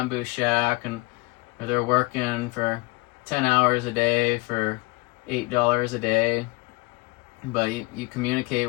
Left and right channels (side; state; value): right; quieter; 23.7 dB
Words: shack, and they're working for 10 hours a day for $8 a day. But you